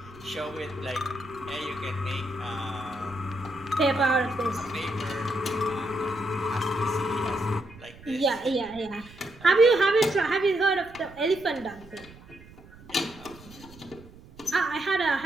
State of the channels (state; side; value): noise; right; rumble, 21 dB below the sound